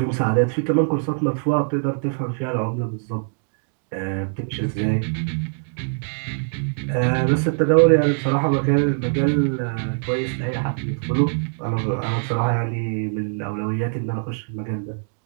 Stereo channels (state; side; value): silent; left; digital silence